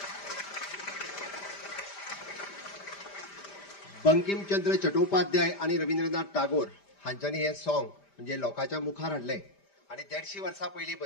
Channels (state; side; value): late; right; 5.0 ms